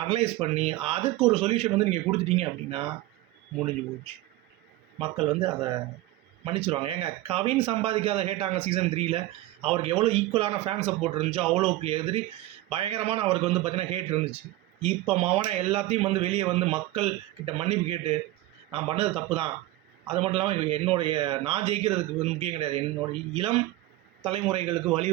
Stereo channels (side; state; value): left; quieter; 16.9 dB